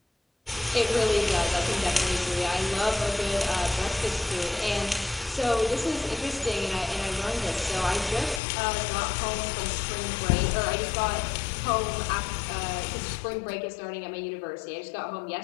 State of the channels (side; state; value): right; drops out; at 8.4 s